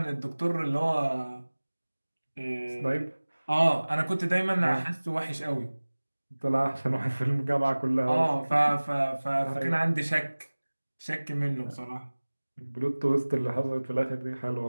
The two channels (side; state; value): both; inverted; correlation -1.00